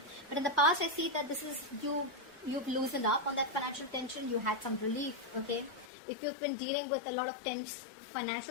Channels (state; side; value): drops out; right; at 5.9 s